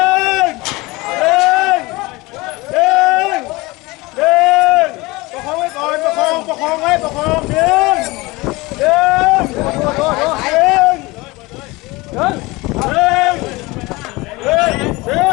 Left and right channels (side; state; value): right; quieter; 22.6 dB